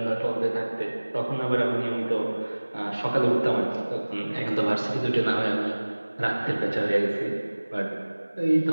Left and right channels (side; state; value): both; inverted; correlation -1.00